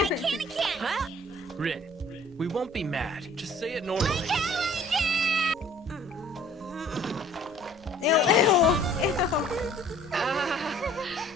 can. Huh? Ren, we won't be mad. Just say it normally. Ew, ew, ew.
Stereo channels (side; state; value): both; normal; correlation 0.53